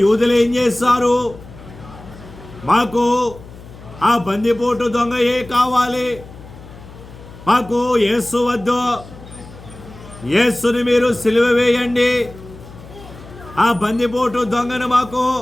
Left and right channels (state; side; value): noise; left; hum, 18 dB below the sound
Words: యూదులు ఏం చేస్తారు? మాకు ఆ బందిపోటు దొంగయే కావాలి, మాకు యేసు వద్దు, యేసుని మీరు సిలువ వేయండి, ఆ బందిపోటు దొంగను మాకు